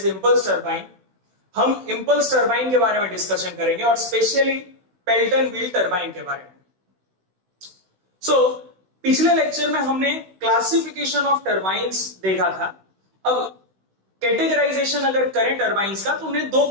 इंपल्स टरबाइन, हम इंपल्स टरबाइन के बारे में डिस्कशन करेंगे और स्पेशली पेल्टन व्हील टरबाइन के बारे में। पिछले लेक्चर में हमने क्लासिफिकेशन ऑफ टरबाइन्स देखा था। अब कैटेगराइजेशन अगर करें टरबाइन्स का तो उन्हें दो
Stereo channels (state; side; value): late; left; 16 ms